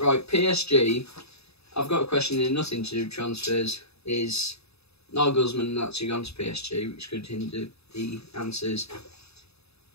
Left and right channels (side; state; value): right; late; 0.79 ms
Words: PSG. I've got a question in nothing to do with transfers. Is Nagelsmann actually gone to PSG, which could hinder the answers.